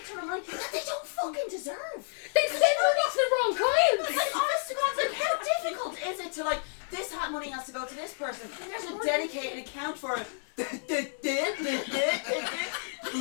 ton of money that they don't fucking deserve. They sent it off the wrong clients. Like honest to God, like how difficult is it to like this money has to go to this person. There's a dedicated account for it.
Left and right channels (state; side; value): silent; right; digital silence